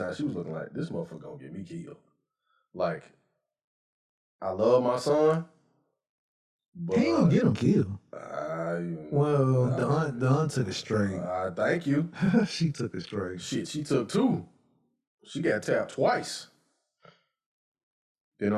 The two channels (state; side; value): identical; both; correlation 1.00